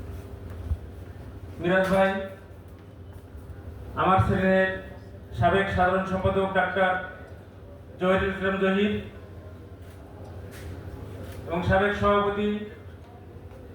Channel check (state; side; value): identical; both; correlation 1.00